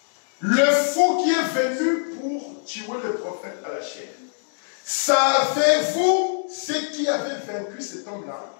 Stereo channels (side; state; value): right; silent; digital silence